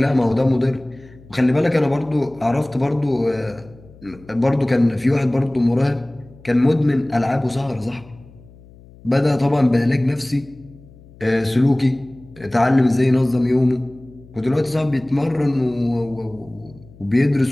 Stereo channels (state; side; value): noise; left; hum, 23 dB below the sound